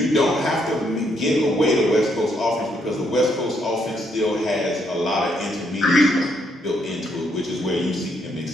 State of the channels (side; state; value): both; normal; correlation 0.74